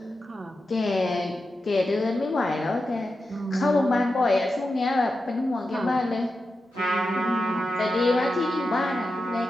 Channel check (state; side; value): normal; both; correlation 0.90